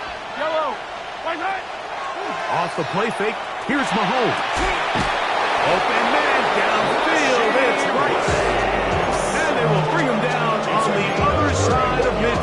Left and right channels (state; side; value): identical; both; correlation 1.00